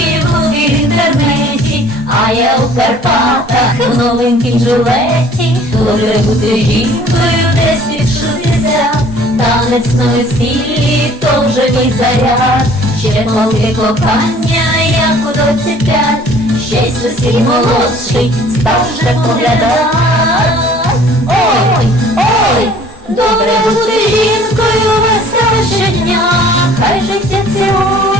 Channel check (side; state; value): both; normal; correlation 0.53